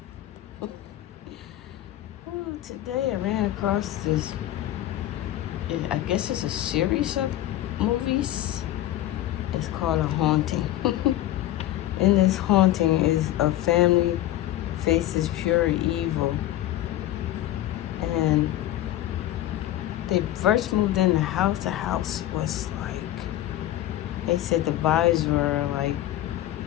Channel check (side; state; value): right; quieter; 13.8 dB